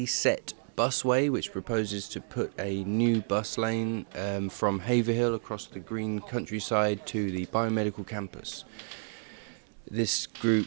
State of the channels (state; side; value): silent; left; digital silence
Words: Busway, which proposes to put a new bus lane from Haverhill across the green countryside to the biomedical campus. This